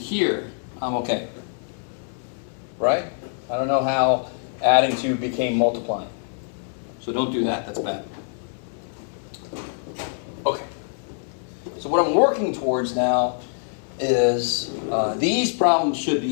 I'm okay. Right? I don't know how adding 2 became multiplying. So don't do that, that's bad. Okay. So what I'm working towards now is these problems should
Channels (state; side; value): silent; right; digital silence